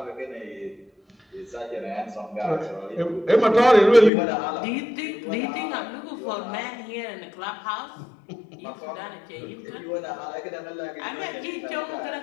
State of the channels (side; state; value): right; drops out; at 4.1 s